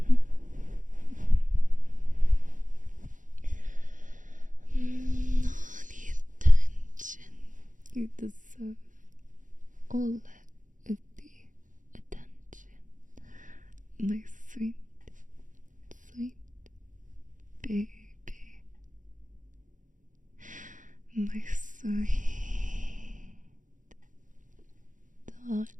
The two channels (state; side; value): late; left; 0.37 ms